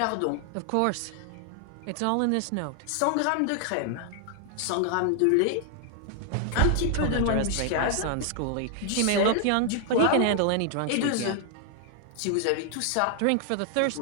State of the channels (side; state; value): both; different; correlation 0.00